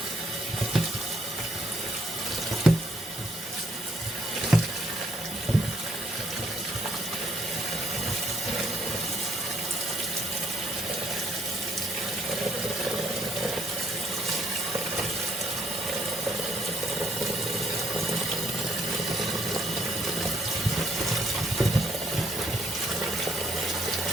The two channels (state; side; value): normal; both; correlation 0.69